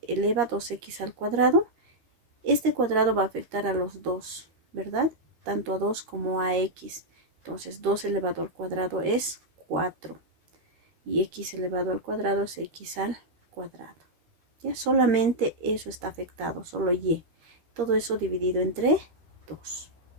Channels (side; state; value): left; late; 13 ms